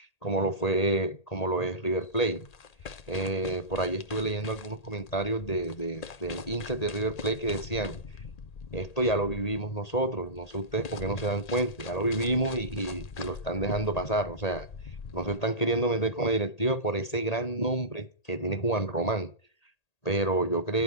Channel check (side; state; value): right; late; 1.8 ms